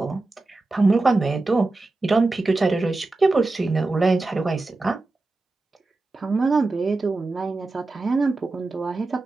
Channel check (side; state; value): left; quieter; 3.3 dB